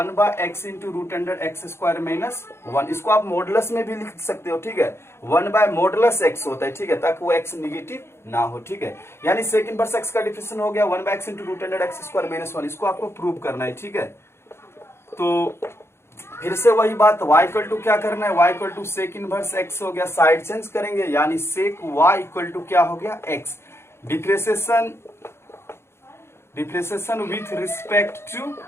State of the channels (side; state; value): right; late; 0.12 ms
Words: into root under x square minus 1। इसको आप मॉडुलस में भी लिख सकते हो, ठीक है, 1/मॉडुलस x होता है, ठीक है, ताकि वो x निगेटिव ना हो, ठीक है। यानी सेक इनवर्स एक्स का डिफरेंशिएशन हो गया 1/x into root under x square minus 1। इसको आपको प्रूव करना है, ठीक है। तो फिर से वही बात, y इक्वल टू क्या करना है, y equal to sec inverse x हो गया, साइड चेंज करेंगे, यानी सेक y इक्वल टू क्या हो गया, x। Differentiation with respect to